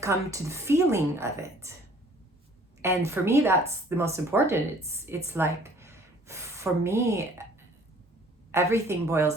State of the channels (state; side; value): normal; both; correlation 0.55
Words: to the feeling of it. And for me, that's the most important. It's like, for me, everything boils